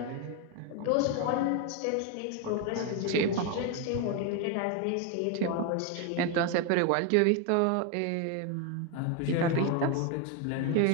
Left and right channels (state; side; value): different; both; correlation 0.01